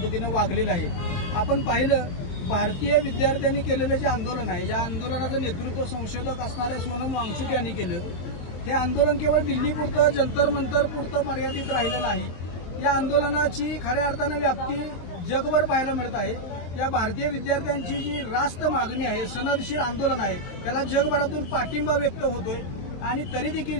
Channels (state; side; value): late; right; 23 ms